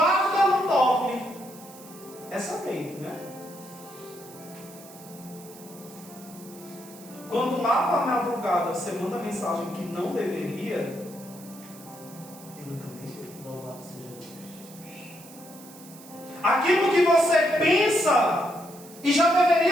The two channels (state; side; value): noise; right; hiss, 19 dB below the sound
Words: não dorme. Essa mente, né? Quando lá para a madrugada você manda mensagem que não deveria, ele também vê. Louvado seja Deus. Aquilo que você pensa e já